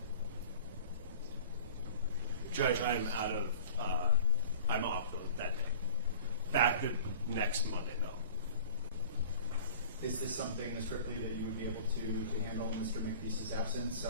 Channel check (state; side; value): inverted; both; correlation -0.44